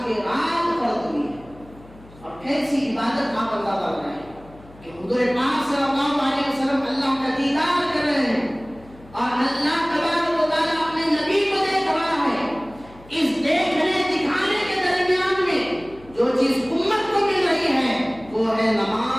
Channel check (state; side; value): noise; left; hum, 23 dB below the sound